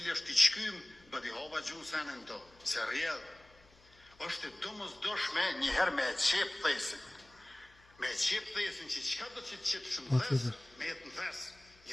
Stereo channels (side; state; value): left; noise; hum, 28 dB below the sound